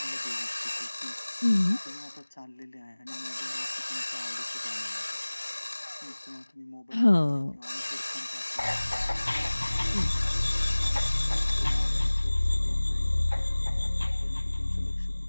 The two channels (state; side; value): inverted; both; correlation -1.00